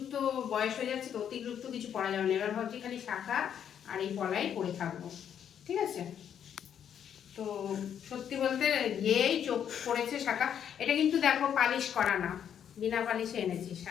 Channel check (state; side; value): quieter; right; 8.9 dB